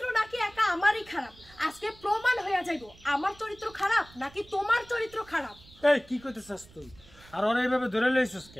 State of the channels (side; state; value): right; noise; rumble, 24 dB below the sound